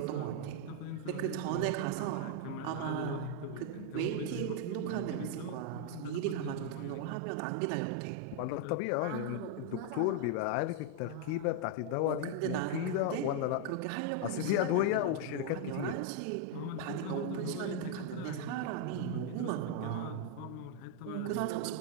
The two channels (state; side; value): different; both; correlation 0.00